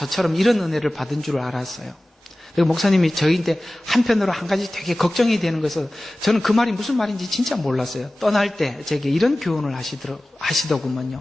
이런 은혜를 받은 줄 알았어요. 그리고 목사님이 저희한테 한편으로 한 가지 되게 걱정이 되는 거여서 저는 그 말이 무슨 말인지 진짜 몰랐어요. 떠날 때 제게 이런 교훈을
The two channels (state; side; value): normal; both; correlation 0.97